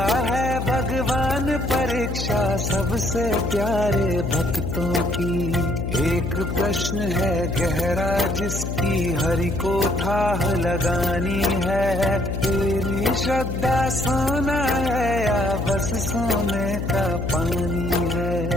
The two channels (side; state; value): left; noise; hum, 3 dB below the sound